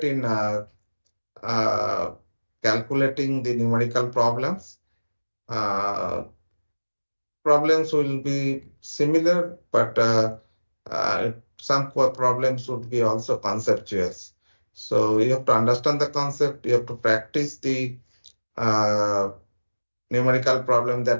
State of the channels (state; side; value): inverted; both; correlation -1.00